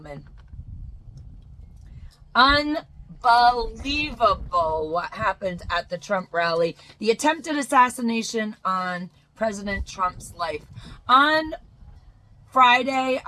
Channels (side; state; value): both; identical; correlation 1.00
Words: Unbelievable what happened at the Trump rally. The attempted assassination on President Trump's life. On Friday,